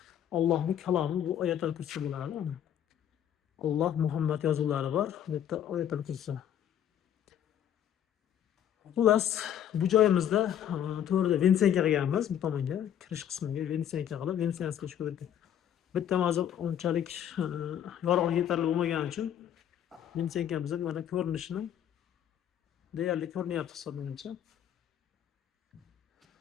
Allohning kalomi, bu oyatul kursi bo'ladi. Alloh Muhammad yozuvlari bor. Bu yerda oyatul kursi. Xullas, bu joyimizda to'g'rida vensiyanka qilganmiz. Bu tomonga kirish qismiga vensiyanka qilib, vensiyanskiy ko'rdik. Bitta hozir unchalik yorug'lik yetarli bo'lmagani uchun vensiyankamiz mana ko'rinishini deyarli ko'rinyapti hisoblangancha.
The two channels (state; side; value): quieter; right; 10.1 dB